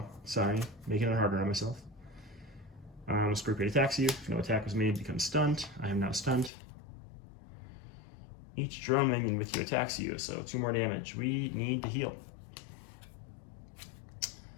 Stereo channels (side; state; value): right; drops out; at 6.5 s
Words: sorry. Making it harder on myself. Scorpion attacks you. If no attack was made, becomes stunned. I am now stunned. Each drone minion with you attacks you, so 2 more damage. We need to heal.